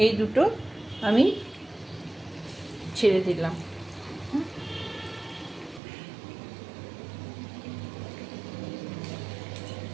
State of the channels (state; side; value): drops out; left; at 5.8 s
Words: এই দুটো আমি ছেড়ে দিলাম।